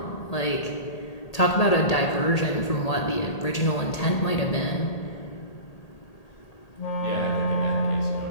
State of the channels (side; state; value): right; late; 1.8 ms